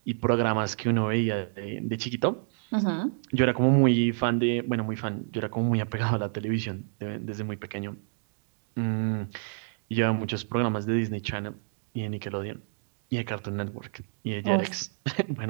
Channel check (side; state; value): left; silent; digital silence